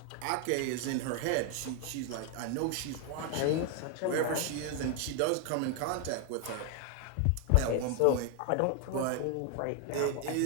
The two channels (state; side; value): different; both; correlation 0.00